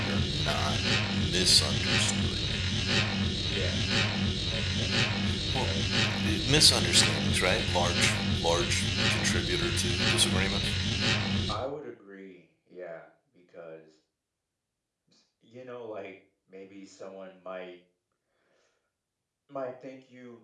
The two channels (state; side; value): identical; both; correlation 1.00